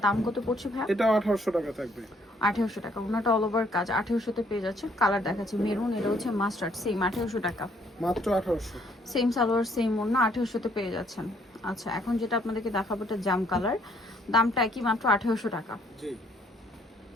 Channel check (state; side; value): normal; both; correlation 0.65